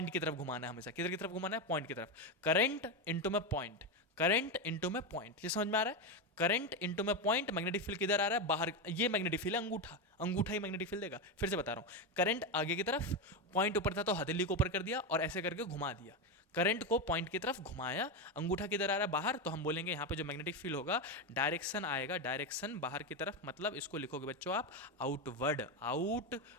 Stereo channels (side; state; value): both; normal; correlation 0.12